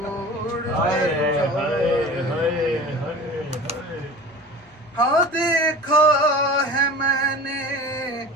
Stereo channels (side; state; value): both; normal; correlation 0.37